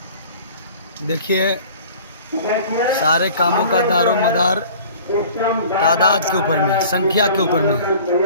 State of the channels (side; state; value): both; inverted; correlation -0.46